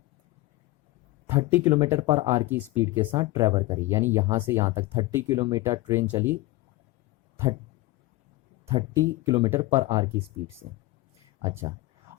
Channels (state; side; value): quieter; right; 19.3 dB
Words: 30 किलोमीटर पर आवर की स्पीड के साथ ट्रैवल करी, यानी यहाँ से यहाँ तक 30 किलोमीटर ट्रेन चली 30 किलोमीटर पर आवर की स्पीड से। अच्छा,